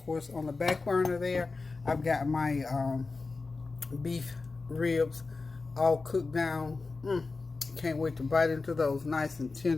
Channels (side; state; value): right; quieter; 3.9 dB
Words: on the back burner there, I've got my beef ribs all cooked down. Can't wait to bite into those, nice and